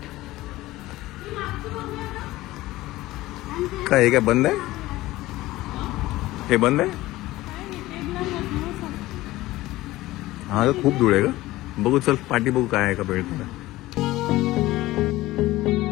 काय हे काय बंद आहे? हे बंद आहे? हा तर खूप धूळ आहे का? बघू चल पाठी बघू काय आहे का भेटतं का.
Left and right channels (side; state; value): right; quieter; 17.5 dB